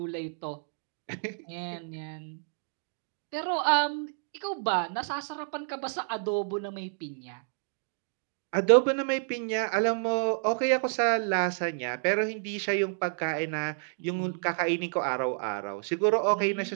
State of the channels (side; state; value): left; silent; digital silence